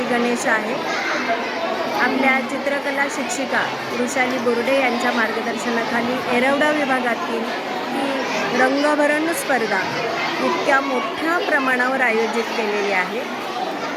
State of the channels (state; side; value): identical; both; correlation 1.00